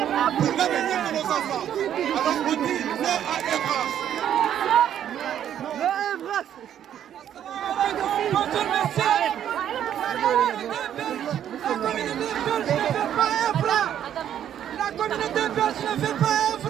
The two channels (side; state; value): left; quieter; 10.2 dB